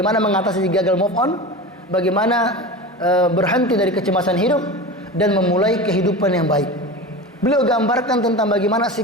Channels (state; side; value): normal; both; correlation 0.30